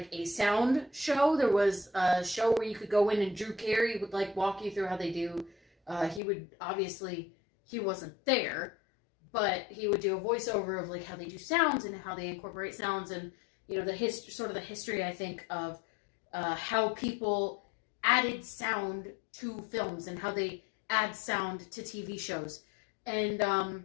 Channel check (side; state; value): right; drops out; at 6.2 s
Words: a sound show. There was a show where you could go in and Drew Carey would like walk you through how they do. He wasn't there, but he would do a voiceover of like how they do sounds and how they incorporate sounds, and you know the history I think of how people added sound to films and how they add sound to TV shows. And